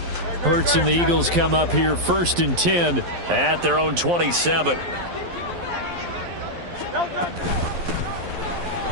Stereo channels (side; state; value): left; late; 12 ms